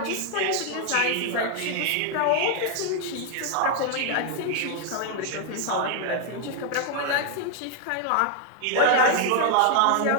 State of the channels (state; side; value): different; both; correlation 0.00